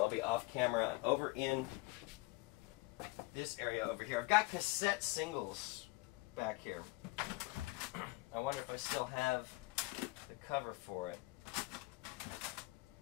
I'll be off camera, over in this area over here. I've got cassette singles back here. I wonder if I still have the cover for it.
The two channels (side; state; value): right; quieter; 23.0 dB